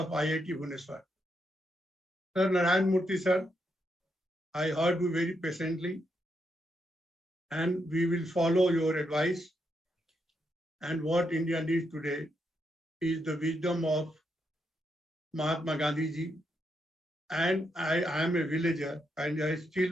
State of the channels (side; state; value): both; normal; correlation 0.80